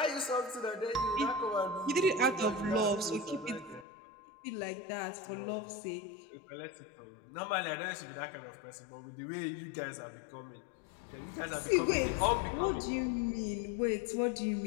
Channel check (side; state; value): right; drops out; at 3.9 s